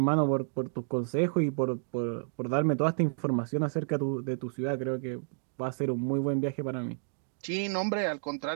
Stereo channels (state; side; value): silent; left; digital silence